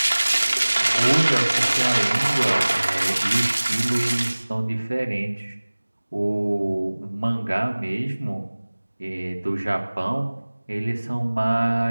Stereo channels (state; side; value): inverted; both; correlation -1.00